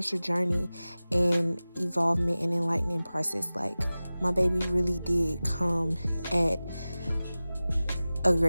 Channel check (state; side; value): inverted; both; correlation -0.97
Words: journey and evolvement and enlightening process. Like, my baby really did come at a